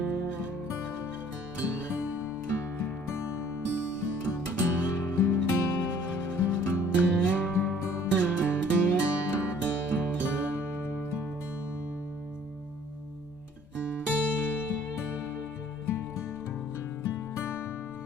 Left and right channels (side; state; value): both; normal; correlation 0.56